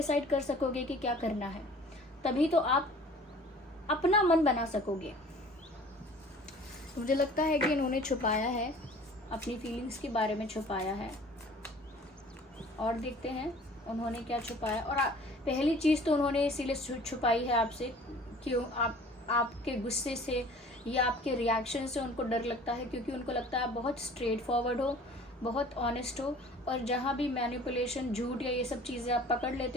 कर सकोगे कि क्या करना है, तभी तो आप अपना मन बना सकोगे। मुझे लगता है कि इन्होंने छुपाया है, अपनी फीलिंग्स के बारे में छुपाया है, और देखते हैं उन्होंने क्या छुपाया। और पहली चीज़ तो उन्होंने इसीलिए छुपाई है आपसे, क्यों आपके गुस्से से या आपके रिएक्शन से उनको डर लगता है, क्योंकि उनको लगता है आप बहुत स्ट्रेट फॉरवर्ड हो, बहुत ऑनेस्ट हो, और जहाँ भी मैनिपुलेशन, झूठ या ये सब चीज़ें आप पकड़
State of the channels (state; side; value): normal; both; correlation 0.48